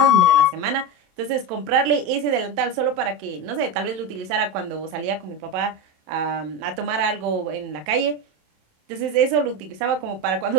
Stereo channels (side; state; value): left; late; 27 ms